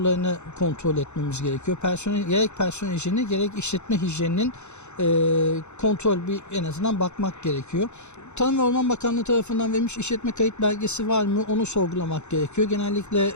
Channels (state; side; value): late; right; 0.83 ms